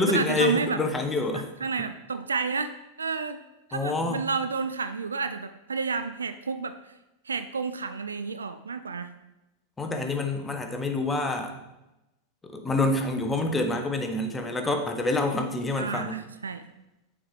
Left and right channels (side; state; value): both; normal; correlation 0.06